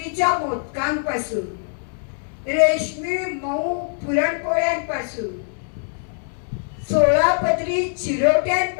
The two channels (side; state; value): right; silent; 64 dB below the other